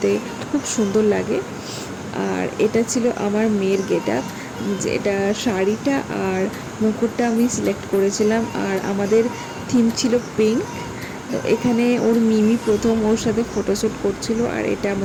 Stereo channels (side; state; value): both; identical; correlation 1.00